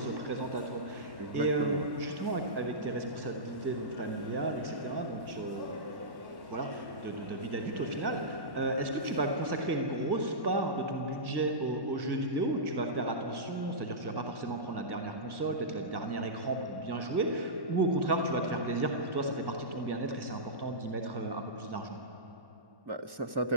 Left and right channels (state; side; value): late; left; 1.1 ms